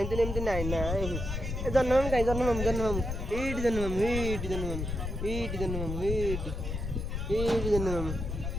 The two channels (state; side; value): noise; left; rumble, 4 dB below the sound